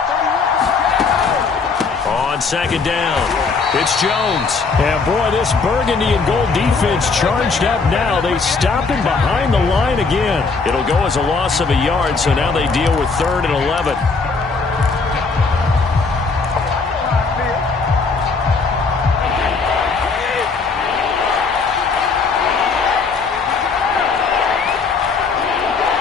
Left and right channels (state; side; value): quieter; right; 4.6 dB